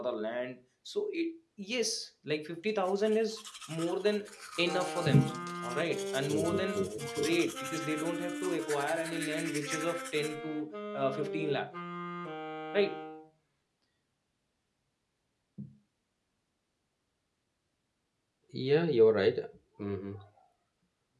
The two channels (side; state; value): both; identical; correlation 1.00